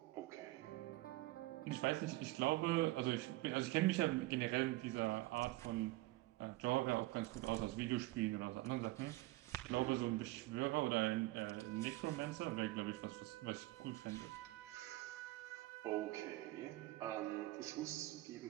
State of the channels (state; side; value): quieter; left; 19.1 dB